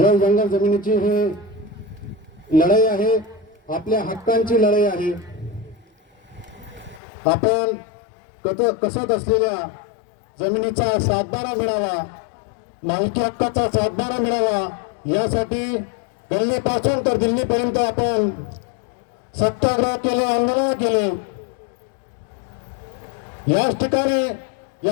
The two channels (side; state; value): right; drops out; at 7.0 s